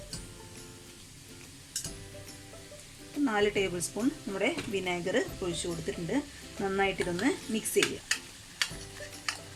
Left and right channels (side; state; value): both; identical; correlation 1.00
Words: 4 ടേബിൾ സ്പൂൺ നമ്മുടെ വിനേഗർ ഒഴിച്ചു കൊടുത്തിട്ടുണ്ട്. നന്നായിട്ട് ഇതൊന്ന് മിക്സ് ചെയ്യുക.